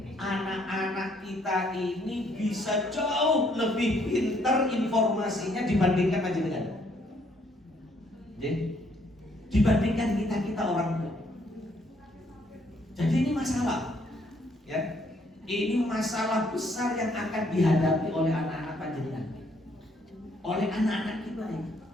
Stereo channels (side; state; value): both; normal; correlation 0.68